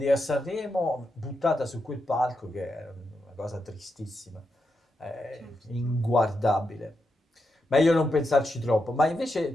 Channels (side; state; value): both; normal; correlation 0.85